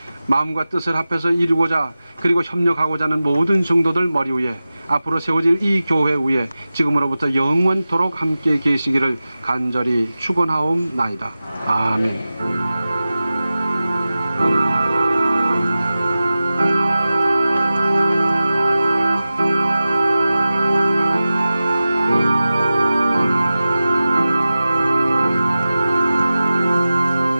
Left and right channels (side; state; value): both; inverted; correlation -0.95